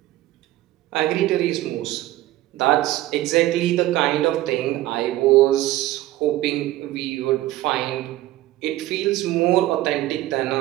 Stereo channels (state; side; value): quieter; left; 15.7 dB